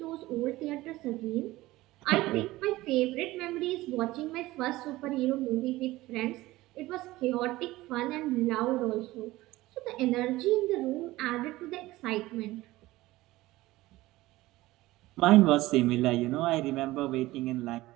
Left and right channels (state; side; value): quieter; left; 18.1 dB